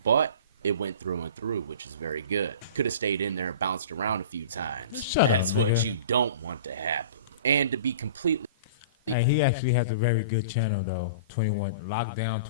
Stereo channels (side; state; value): both; inverted; correlation -0.39